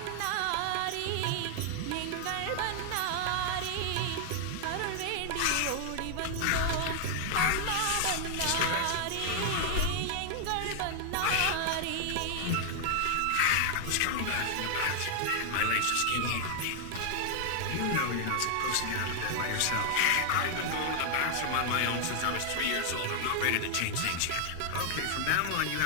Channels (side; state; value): both; different; correlation 0.00